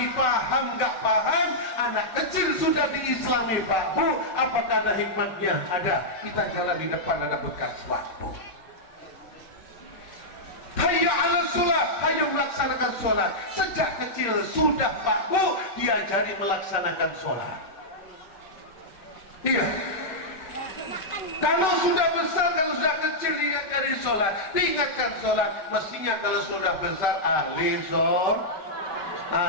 paham nggak paham, anak kecil sudah diislami Pak Bu. Apakah ada hikmahnya? Ada. Kita jalan di depan ada bekas waktu. Hayya 'alas shalah, hayo melaksanakan sholat. Sejak kecil sudah Pak Bu diajari melaksanakan sholat. Iya. Kalau sudah besar, kalau sudah kecil diajari sholat, diingatkan sholat. Mestinya kalau sudah besar ahli sholat.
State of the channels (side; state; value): right; late; 5.2 ms